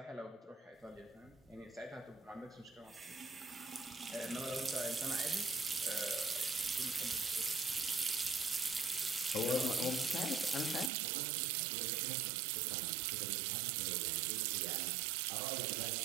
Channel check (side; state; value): left; drops out; at 10.9 s